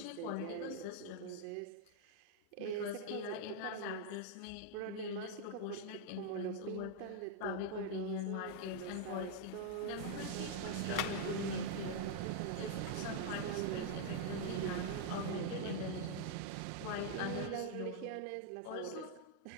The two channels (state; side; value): different; both; correlation -0.01